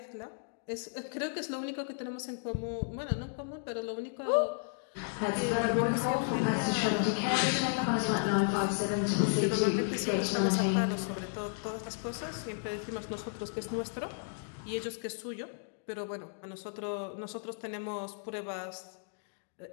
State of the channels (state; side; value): silent; right; digital silence